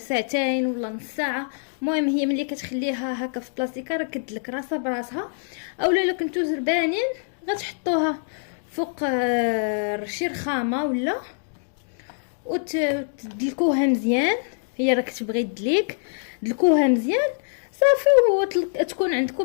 ولا نص ساعه. المهم هي ملي كتخليها هكا في بلاستيكه راه كتدلك راسها براسها. اولا الا كنتو زربانين غتحطوها فوق شي رخامه ولا وتدلكوها مزيان. هي راه كتبغي تدليك، دلكوها مزيان صافي وتكون عندكم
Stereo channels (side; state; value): right; silent; digital silence